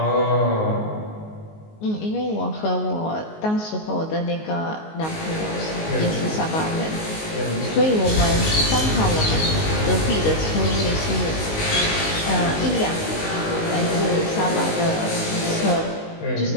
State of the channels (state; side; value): late; right; 19 ms